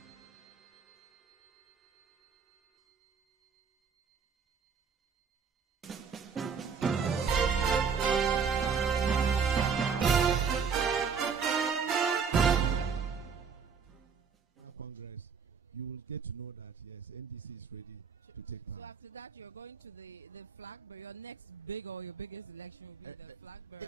Congress, you will get to know that yes, NDC is ready to take part. So after that, you're going to the flag bearer. Your next big or your biggest election will be the flag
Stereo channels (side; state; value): left; quieter; 6.1 dB